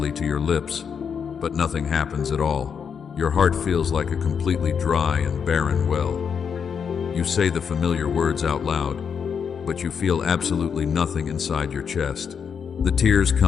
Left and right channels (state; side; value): quieter; right; 6.9 dB